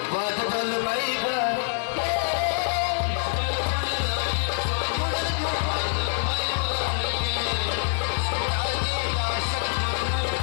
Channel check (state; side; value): silent; right; 61 dB below the other